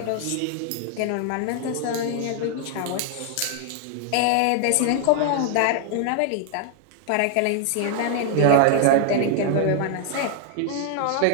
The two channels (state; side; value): different; both; correlation 0.00